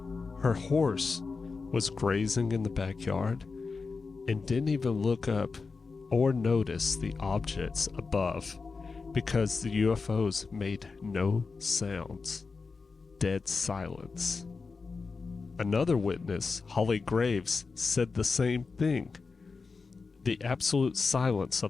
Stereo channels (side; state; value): right; quieter; 4.5 dB